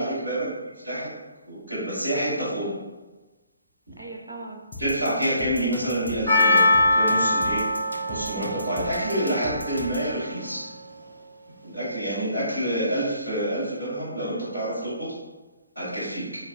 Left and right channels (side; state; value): both; inverted; correlation -0.67